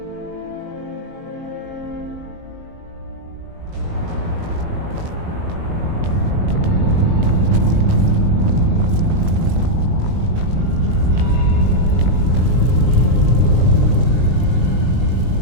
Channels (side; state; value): left; late; 19 ms